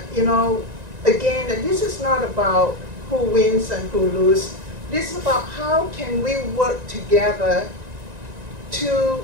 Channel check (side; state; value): left; late; 1.9 ms